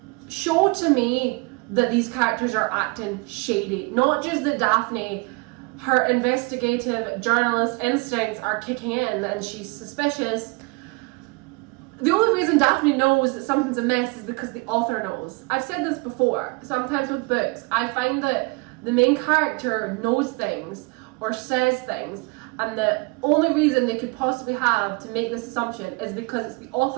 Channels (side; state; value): left; quieter; 28.1 dB